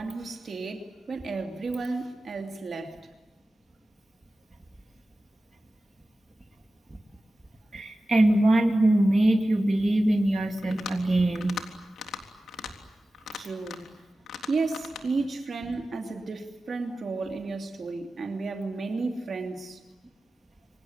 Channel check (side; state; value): both; normal; correlation 0.95